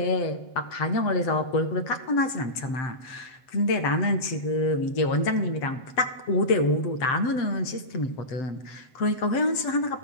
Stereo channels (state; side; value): late; right; 7.8 ms